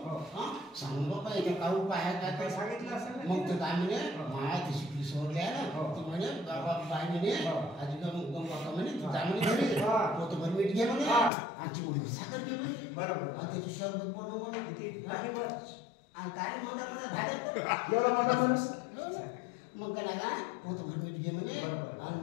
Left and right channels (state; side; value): drops out; right; at 11.3 s